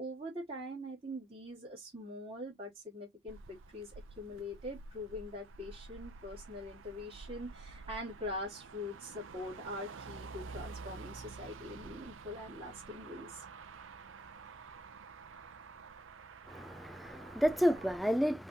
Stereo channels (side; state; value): both; normal; correlation 0.75